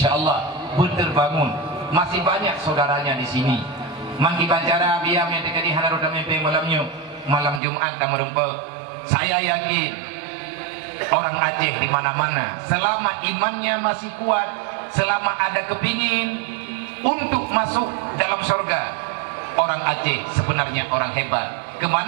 berterbangun masih banyak saudaranya di sini mangki bancara biam yang terjadi hanaru tampe malamnya malam Jumat tamu rempek saya yakin orang Aceh di mana-mana selama imannya masih kuat, selama ada kepingin untuk masuk dalam surga, orang Aceh sebenarnya orang hebat.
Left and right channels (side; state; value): left; drops out; at 7.6 s